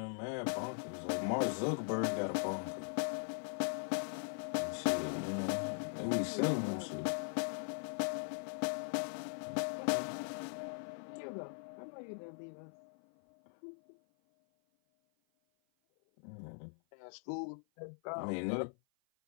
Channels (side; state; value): right; silent; 51 dB below the other